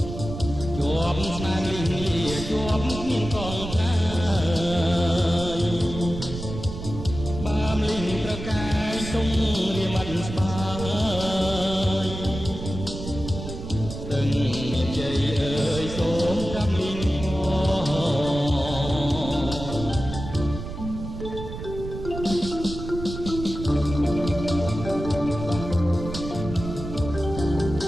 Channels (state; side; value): noise; right; rumble, 8 dB below the sound